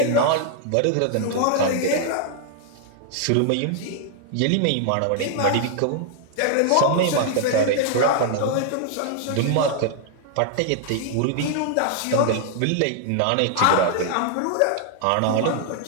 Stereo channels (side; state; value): both; different; correlation -0.01